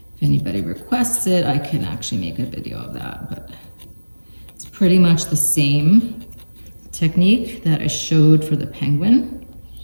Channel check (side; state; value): both; inverted; correlation -1.00